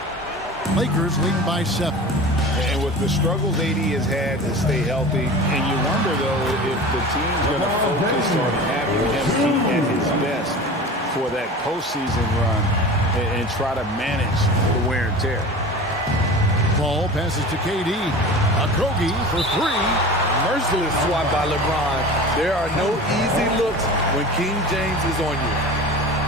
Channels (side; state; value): both; normal; correlation 0.35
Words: Lakers leading by 7. And with the struggles AD has had to stay healthy, and you wonder, though, if the team's going to focus on having him be at his best for that postseason run and try to manage the wear and tear. Ball passes to KD. Okogie for 3. Merciless swat by LeBron. There are no easy looks when King James is on you.